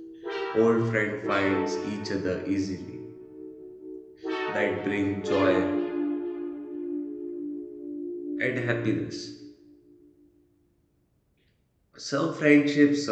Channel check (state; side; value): identical; both; correlation 1.00